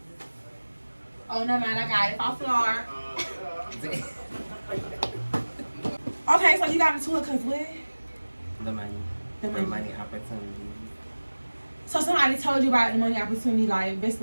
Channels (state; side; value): inverted; both; correlation -1.00